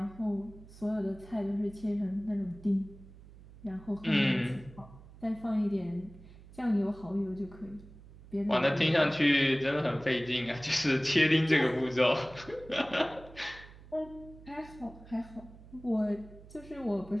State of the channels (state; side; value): noise; right; hum, 20 dB below the sound